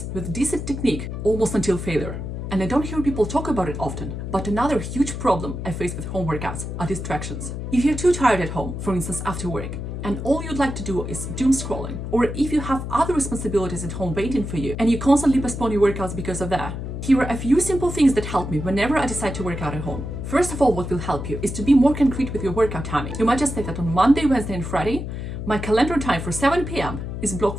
with decent technique almost until failure. And I don't hear people talk about it often, but another huge problem I face with home workouts are distractions. If you're too tired at home, for instance after work, and all you'd like to do is doom scrolling, or if you have other responsibilities at home waiting for you and you constantly postpone your workouts because of that, here are a few simple things that help me whenever I decide to work out at home. First of all, what will help you is to be more concrete with your workout timing. You might just say that on Monday, Wednesday and Friday, my calendar time for 7 p.m. is blocked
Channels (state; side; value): noise; left; hum, 6 dB below the sound